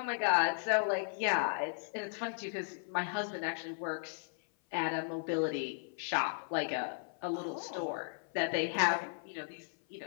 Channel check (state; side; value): silent; right; 54 dB below the other